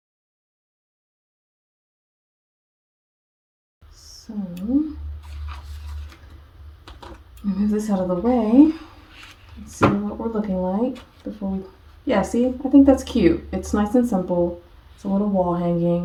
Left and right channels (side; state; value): both; identical; correlation 1.00